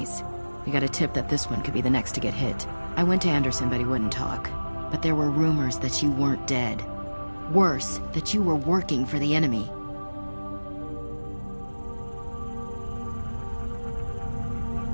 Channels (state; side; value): inverted; both; correlation -1.00